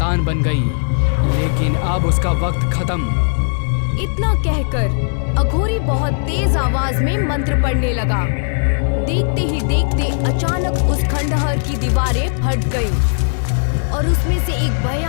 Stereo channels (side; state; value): right; silent; digital silence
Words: बन गई, लेकिन अब उसका वक्त खत्म। इतना कहकर अघोरी बहुत तेज आवाज में मंत्र पढ़ने लगा। देखते ही देखते अचानक उस खंडहर की दीवारें फट गईं और उसमें से एक